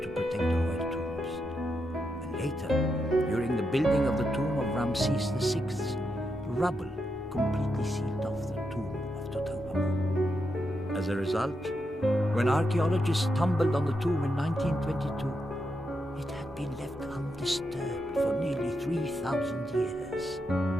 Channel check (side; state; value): both; normal; correlation 0.84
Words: to protect the royal tombs. And later, during the building of the tomb of Ramses VI, rubble completely sealed off the tomb of Tutankhamun. As a result, when archaeologists stumbled on the tomb in 1922, it had been left undisturbed for nearly 3,000 years.